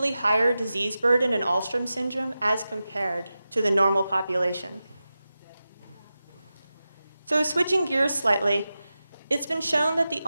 higher disease burden in Alström syndrome as compared to the normal population. So switching gears slightly, it's been shown that the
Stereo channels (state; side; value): inverted; both; correlation -0.93